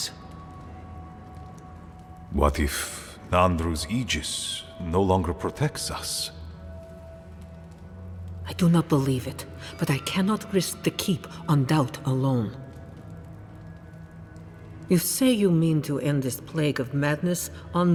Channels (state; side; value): identical; both; correlation 1.00